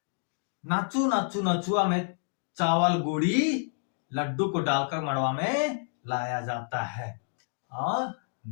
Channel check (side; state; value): right; silent; 59 dB below the other